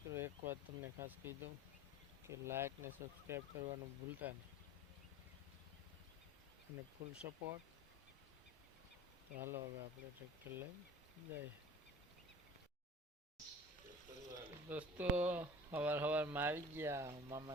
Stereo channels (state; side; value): normal; both; correlation 0.41